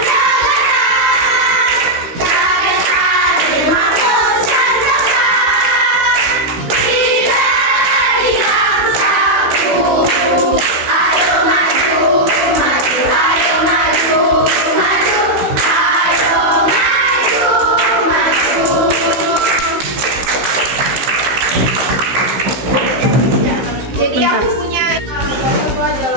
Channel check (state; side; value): late; left; 16 ms